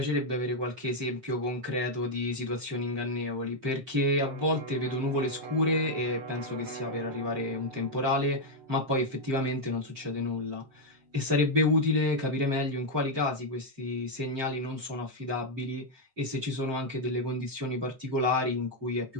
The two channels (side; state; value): left; late; 7.6 ms